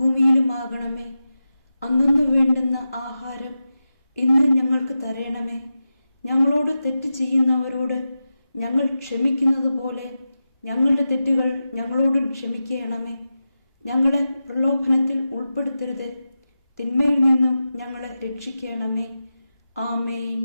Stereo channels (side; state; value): both; inverted; correlation -0.92